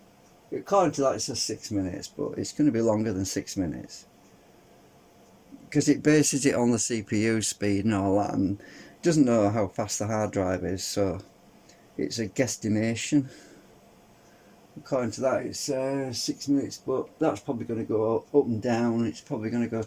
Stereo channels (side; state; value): both; identical; correlation 1.00